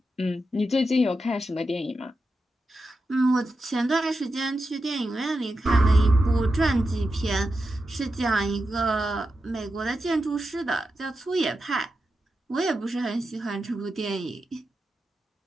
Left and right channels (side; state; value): both; normal; correlation 0.89